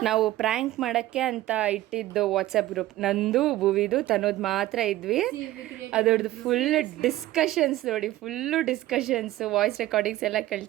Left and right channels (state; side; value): quieter; left; 15.6 dB